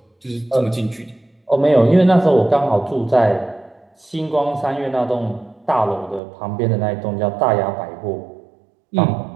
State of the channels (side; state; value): left; drops out; at 6.2 s